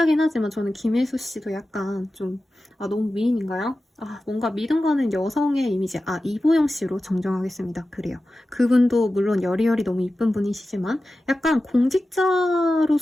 하지만 저는 김혜수 씨도 약간 좀 너무 미인인가요? 뭔가 믿음 가는 여성의 이미지. 이보영 씨로 정정하겠습니다. 그래요. 그분도 물론 여리여리 너무 이쁜 분이시지만 약간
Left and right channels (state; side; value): normal; both; correlation 0.94